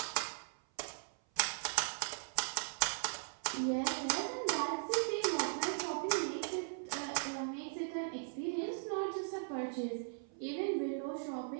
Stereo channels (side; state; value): left; silent; 52 dB below the other